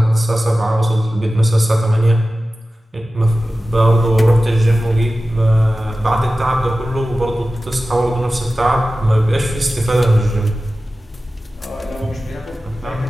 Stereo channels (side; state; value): both; normal; correlation 0.95